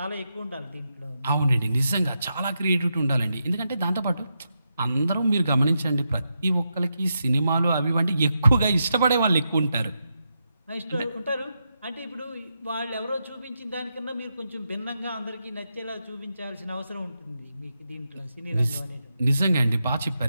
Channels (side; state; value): both; inverted; correlation -0.85